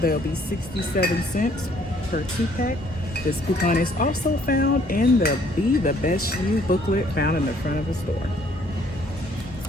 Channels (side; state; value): both; normal; correlation 0.62